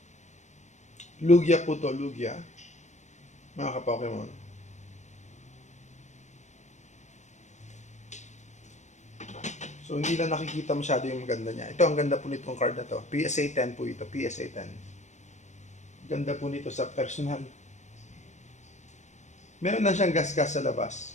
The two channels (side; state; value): right; late; 0.34 ms